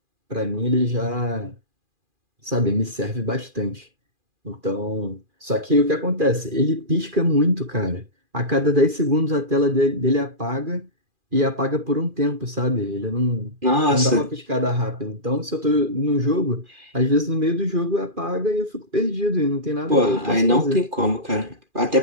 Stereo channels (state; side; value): late; left; 2.4 ms